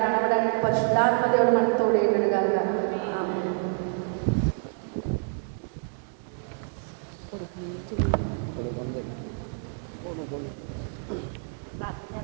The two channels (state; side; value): silent; left; 60 dB below the other